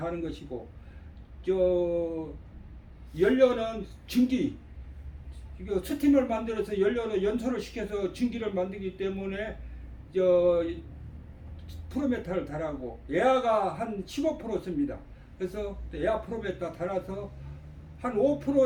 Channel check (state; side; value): identical; both; correlation 1.00